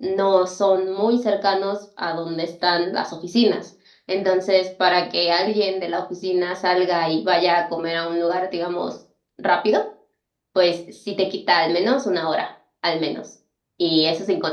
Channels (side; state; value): both; identical; correlation 1.00